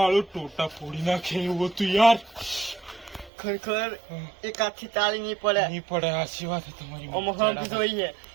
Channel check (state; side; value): drops out; left; at 3.3 s